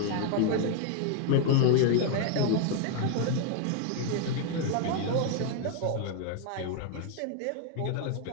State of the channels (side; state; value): both; different; correlation 0.00